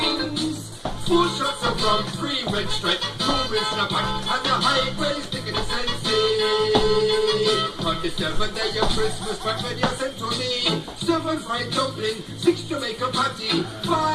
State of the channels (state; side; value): identical; both; correlation 1.00